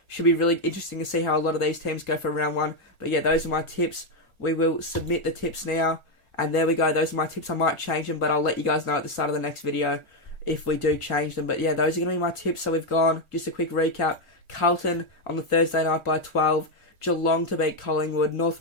Should be really interesting to see how a lot of these teams go for round one. But yeah, those are my tips. We will submit the tips now. And there we go. Those are my tips. I might change them, but I'll let you guys know at the start of the next video if we do change them. But yeah, those are going to be my tips. So we've gone, just a quick recap. Carlton on the Thursday night by 12. Geelong to beat Collingwood. North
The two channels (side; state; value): right; late; 1.4 ms